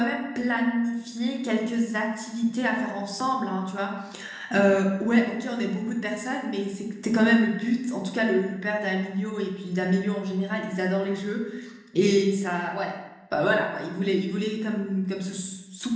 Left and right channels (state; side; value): identical; both; correlation 1.00